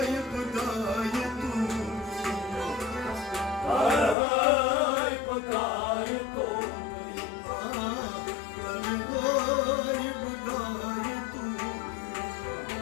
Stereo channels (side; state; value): right; drops out; at 4.2 s